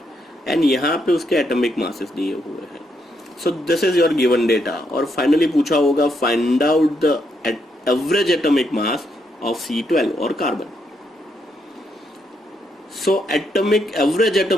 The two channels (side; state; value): both; normal; correlation 0.78